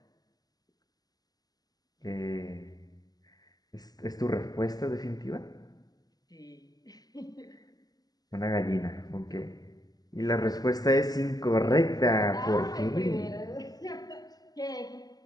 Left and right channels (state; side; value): late; right; 0.19 ms